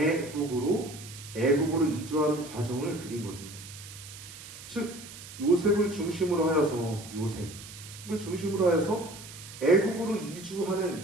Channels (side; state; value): right; noise; hiss, 15 dB below the sound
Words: 이주하는 과정을 그린 겁니다. 즉 요셉을 중심으로 하여서 애국으로